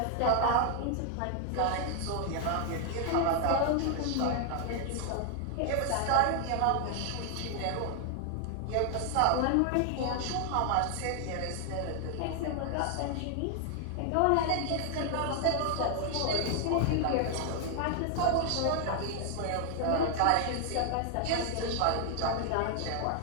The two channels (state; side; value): different; both; correlation 0.00